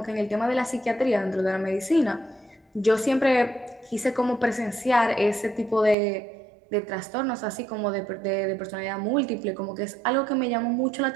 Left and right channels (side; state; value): left; drops out; at 6.0 s